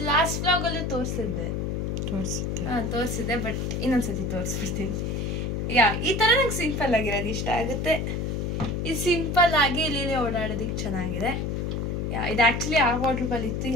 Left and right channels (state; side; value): noise; left; hum, 1 dB below the sound